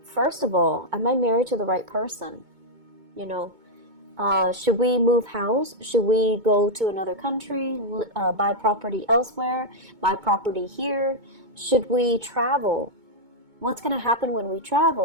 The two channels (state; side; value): late; left; 2.2 ms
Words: First of all, am I married to the right person? Should we move house? Should we go to another country, buy property elsewhere, buy property here? Should we travel? What's going to happen when we